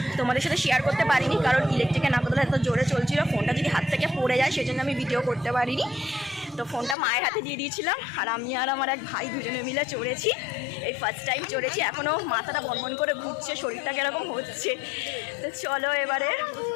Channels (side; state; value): right; drops out; at 7.0 s